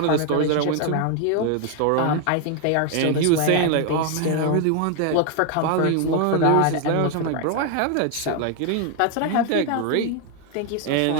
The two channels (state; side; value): different; both; correlation 0.01